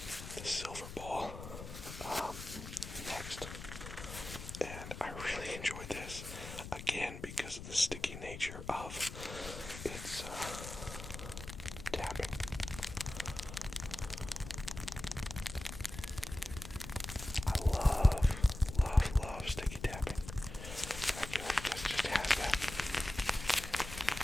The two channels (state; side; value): noise; left; rumble, 10 dB below the sound